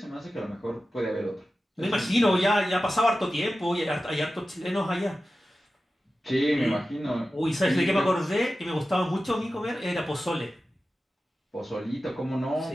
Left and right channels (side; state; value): both; normal; correlation 0.94